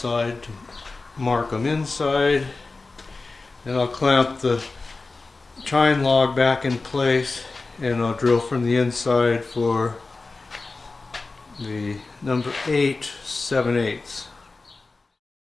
to mark them inside. Then I'll clamp the chine log back in place, and I'll drill from the inside for the number 8 7/8.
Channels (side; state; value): right; quieter; 3.7 dB